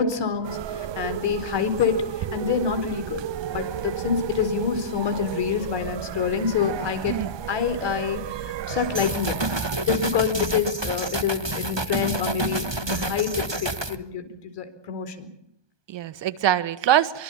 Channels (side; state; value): left; late; 1.2 ms